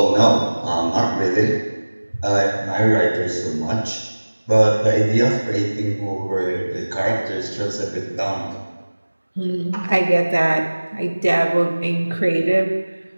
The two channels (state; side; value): inverted; both; correlation -1.00